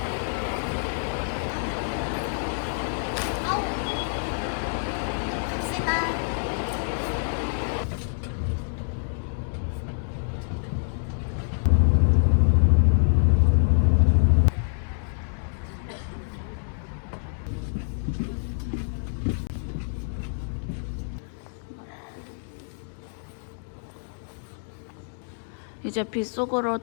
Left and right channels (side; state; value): right; silent; digital silence